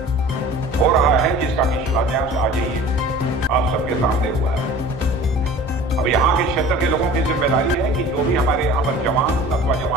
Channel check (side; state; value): both; normal; correlation 0.43